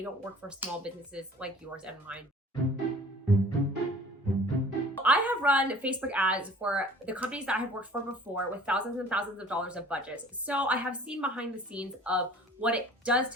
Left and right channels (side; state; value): both; normal; correlation 0.48